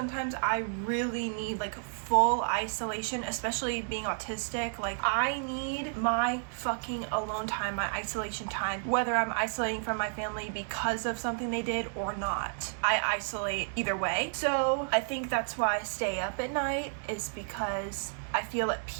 I really need like full isolation, especially being autistic. Like I need my fucking alone time, my isolation time, whether I'm isolating from my family because of something they did or not. I isolate either way. So I think that's why I stay up at night, is because I feel at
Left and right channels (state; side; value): silent; left; 57 dB below the other